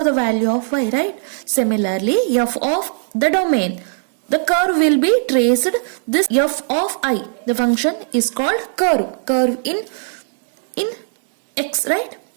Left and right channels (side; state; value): left; silent; digital silence